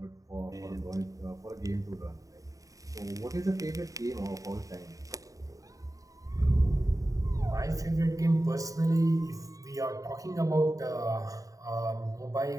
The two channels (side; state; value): left; late; 0.16 ms